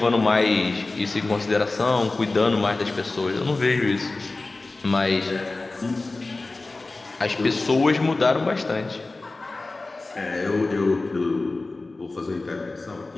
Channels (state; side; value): quieter; right; 3.3 dB